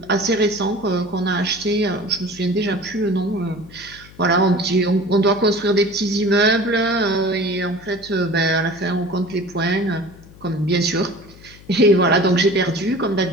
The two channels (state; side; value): noise; left; hum, 22 dB below the sound